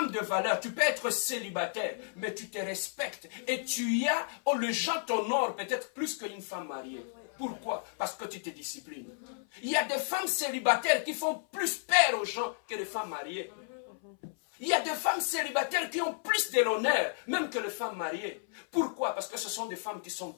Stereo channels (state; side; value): silent; right; 56 dB below the other